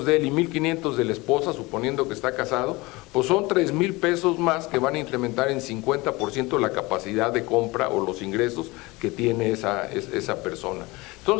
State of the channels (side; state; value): right; quieter; 22.9 dB